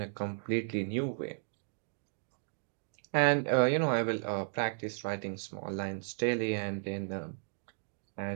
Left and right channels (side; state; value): left; silent; digital silence